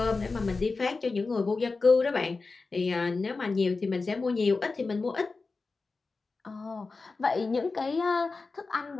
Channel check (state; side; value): quieter; right; 4.0 dB